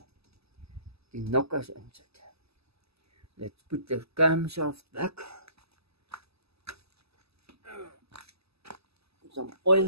nokkers insit. Let's put the camshaft back. Some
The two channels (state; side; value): late; left; 0.78 ms